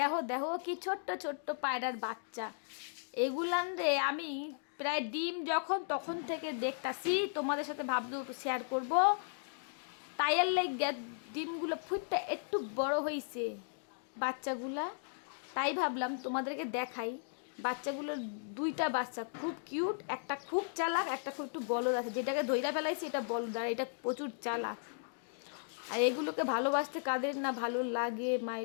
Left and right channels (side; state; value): right; silent; digital silence